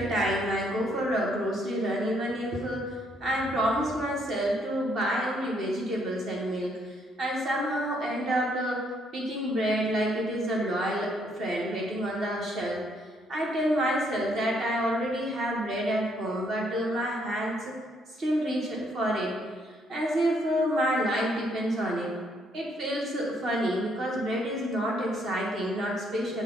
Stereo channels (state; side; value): normal; both; correlation 0.70